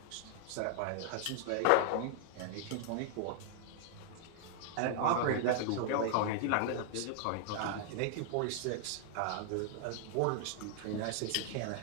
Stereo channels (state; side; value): different; both; correlation 0.00